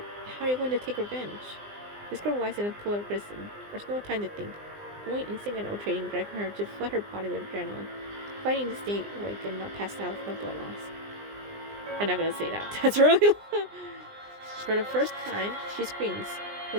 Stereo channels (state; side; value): late; left; 20 ms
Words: how are you going to take revenge? This girl lies in a pool of prison. There's no time to think. Only instinct and trading driving her to flood her body with adrenaline, fighting to stay awake and not pass out from blood loss. I'm not gonna say that. That's really For the first time, she screams,